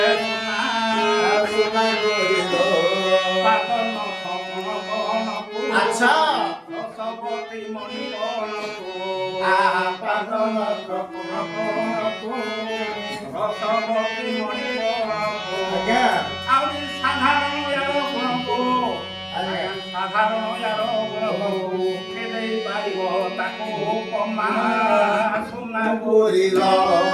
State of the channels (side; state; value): both; identical; correlation 1.00